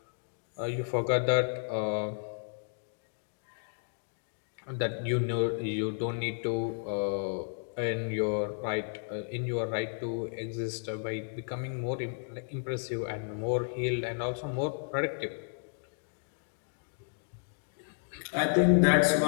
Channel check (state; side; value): silent; right; digital silence